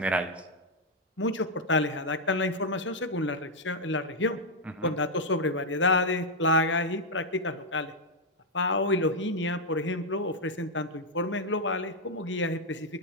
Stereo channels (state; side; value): normal; both; correlation 0.00